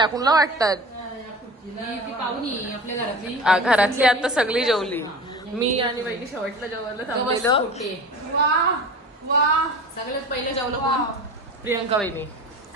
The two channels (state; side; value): normal; both; correlation 0.36